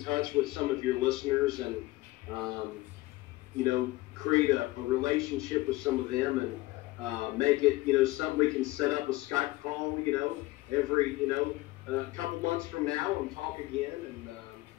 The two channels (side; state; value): right; quieter; 19.2 dB